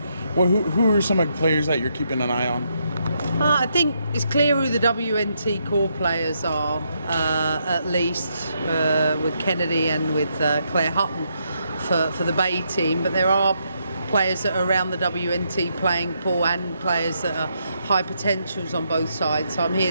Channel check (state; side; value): inverted; both; correlation -0.78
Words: who are some of the players that you're keeping an eye on? I think it's clear who the WNT core players are, at least with Kennedy and with Claire Hutton for the Bay team. But there are players that are around the WNT playing pool and players that are high potentials on both sides. So I'm